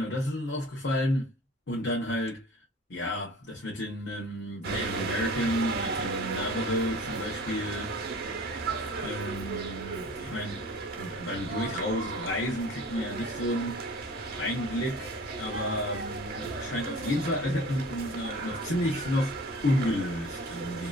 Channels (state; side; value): normal; both; correlation 0.44